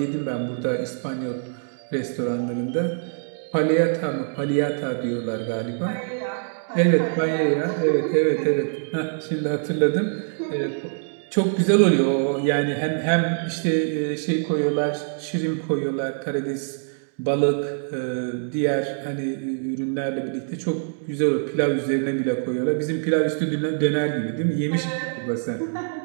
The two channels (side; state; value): left; silent; digital silence